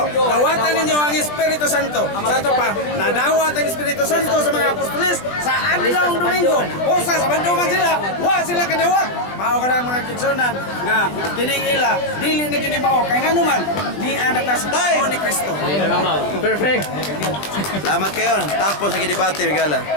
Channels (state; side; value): late; right; 20 ms